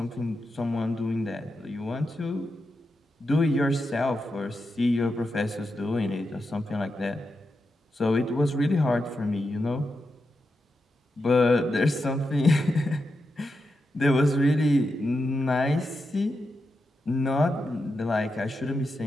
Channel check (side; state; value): both; normal; correlation 0.87